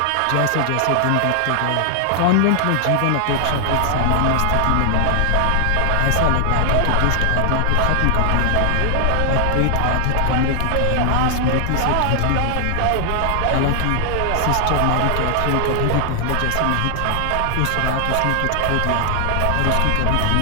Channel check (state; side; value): different; both; correlation 0.00